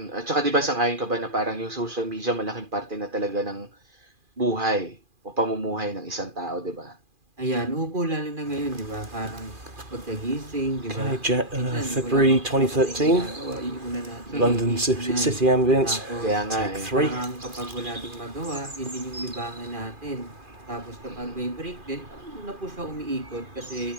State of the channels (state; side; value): late; left; 2.4 ms